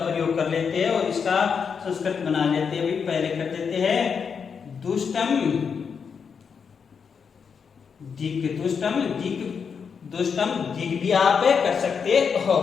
कर लेते हैं और इसका संस्कृत बना लेते हैं। भाई पहले कर देते हैं दुष्टम दिक, दुष्टम दिक, दुष्टम दिक भी आप कर सकते हो।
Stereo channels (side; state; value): right; quieter; 6.3 dB